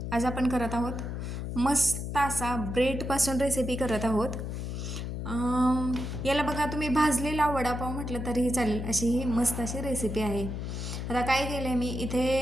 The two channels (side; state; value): left; noise; hum, 5 dB below the sound